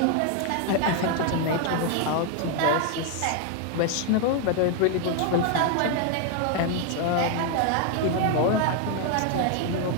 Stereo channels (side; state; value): both; different; correlation 0.00